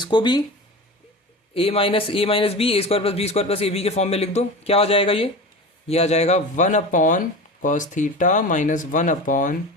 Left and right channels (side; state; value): both; normal; correlation 0.30